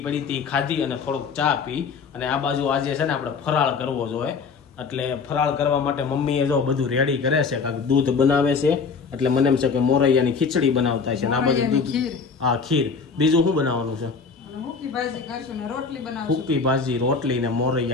પડી હતી ખાધી અને થોડોક ચા પી, અને આ બાજુ આજે છે ને આપણે ફરાળ કરવો જોઈએ। એટલે ફરાળ કરવા માટે મમ્મીએ જો બધું રેડી કરે છે, કાંઈક દૂધ બનાવે છે, એટલે મને એમ છે કે મોરૈયાની ખીચડી બનાવતા છે ને આ બાજુ દૂધ, હા ખીર, બીજું શું બનાવવાનું છે? સૂકી ભાજી, રોટલી ને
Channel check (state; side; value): quieter; right; 5.2 dB